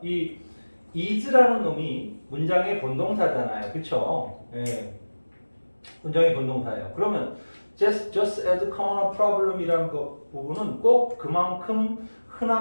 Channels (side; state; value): both; inverted; correlation -1.00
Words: 이 is라는 놈이 문장의 본동사잖아요. 그렇죠? 문장의 본동사예요. 그러면 just as common a problem이라는 부분은 꼭 그만큼